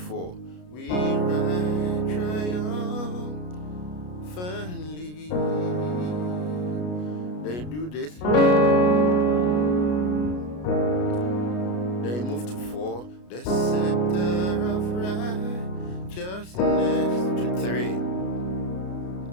We ride triumphantly. They do this. They move to 4. The scepter of righteousness to 3.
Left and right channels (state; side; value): late; right; 33 ms